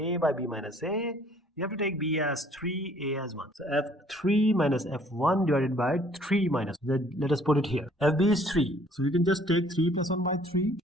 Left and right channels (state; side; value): normal; both; correlation 0.58